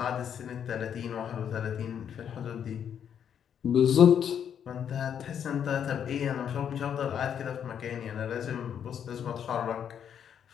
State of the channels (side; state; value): right; quieter; 8.6 dB